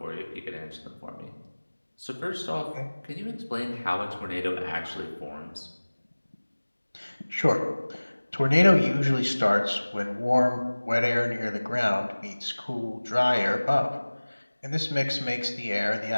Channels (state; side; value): inverted; both; correlation -1.00